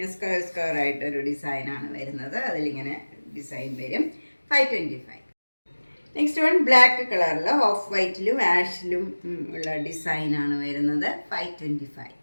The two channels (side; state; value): both; inverted; correlation -1.00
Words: സ്ക്വയർ ആയിട്ടൊരു ഡിസൈനാണ് വരുന്നത്. അതിലിങ്ങനെ ഡിസൈൻ വരും, 525. നെക്സ്റ്റ് വൺ ബ്ലാക്ക് കളറിൽ ഓഫ് വൈറ്റിലും ആഷിലും ഉള്ള ഡിസൈനാണ് വരുന്നത്, 525.